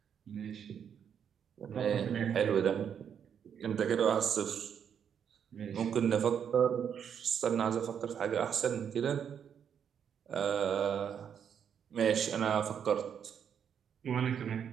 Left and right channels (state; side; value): quieter; left; 8.1 dB